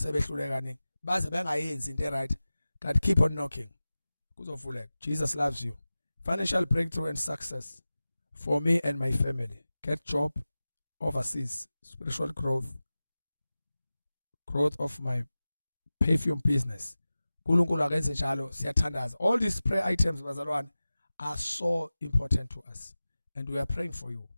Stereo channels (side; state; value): both; inverted; correlation -0.96